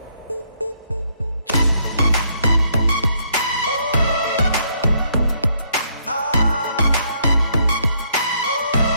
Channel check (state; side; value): inverted; both; correlation -0.71